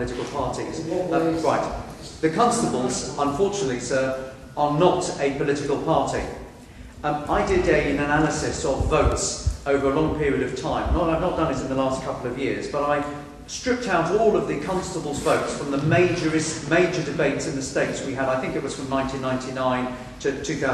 parties. Right. The Constables, unfortunately, sir, are not a political party. I did an analysis of votes over a long period of time. I've not done it in the last couple of years, but I stripped out all of the Constables' votes from the major debates in the States we had. I think it was from 1999 to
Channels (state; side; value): identical; both; correlation 1.00